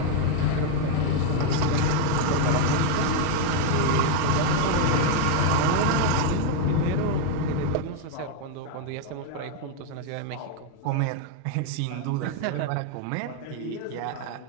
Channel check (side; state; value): both; different; correlation 0.01